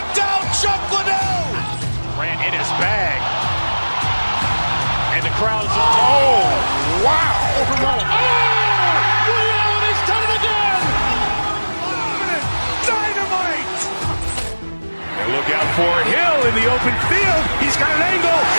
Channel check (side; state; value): both; inverted; correlation -1.00